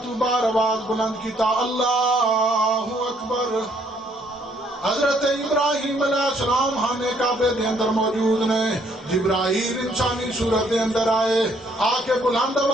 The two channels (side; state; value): both; normal; correlation 0.67